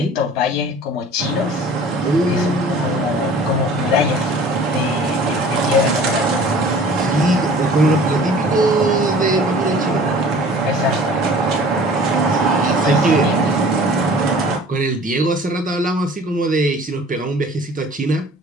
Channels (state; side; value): normal; both; correlation 0.47